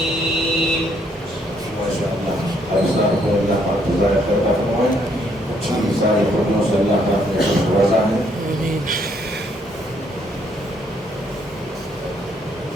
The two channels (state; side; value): normal; both; correlation 0.69